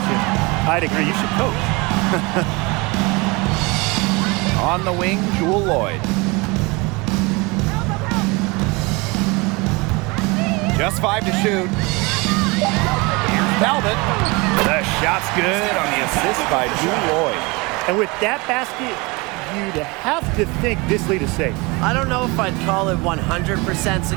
I'd agree. You should coach. On the wing, Jewel Lloyd. Just 5 to shoot. Here's Talbot. The shot's good on the assist by Jewel Lloyd. And with that basket, you'd have to think this lead is safe. I don't know if I'd call it 100%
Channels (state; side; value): quieter; left; 26.2 dB